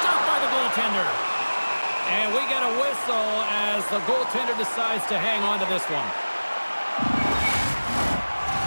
by the goaltender. And we get a whistle as the goaltender decides to hang on to this one.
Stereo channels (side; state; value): both; inverted; correlation -1.00